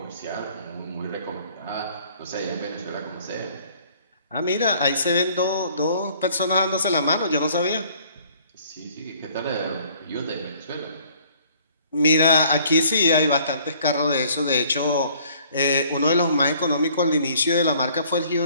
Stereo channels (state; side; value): inverted; both; correlation -0.58